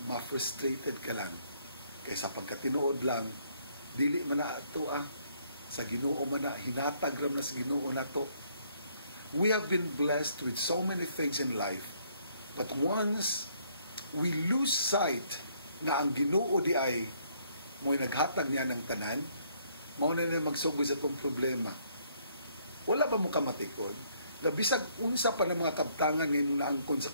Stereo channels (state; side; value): inverted; both; correlation -0.67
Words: ma-frustrated ka lang. Kaysa pagkatinuod lang, dili man na ito sa Ginoo man na, hinatag ram na sa Ginoo na to. We have been blessed with so many things in life, but once we lose sight na ang Ginoo di ay mo'y naghatag niya ng tanan, mao na magsugod sa itong problema. Wala ba mo kamatikod? Na bisag unsa pa ng mga kabtangan ngayon naangkon sa